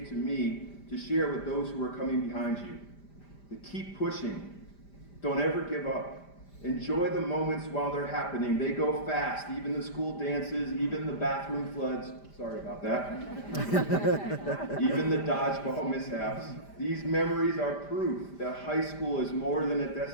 to me to share with those who are coming behind you. To keep pushing. Don't ever give up. Enjoy the moments while they're happening. They go fast, even the school dances, even the bathroom floods. Sorry about that. Even the dodgeball mishaps. These memories are proof that high school is more than a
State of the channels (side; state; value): right; late; 5.0 ms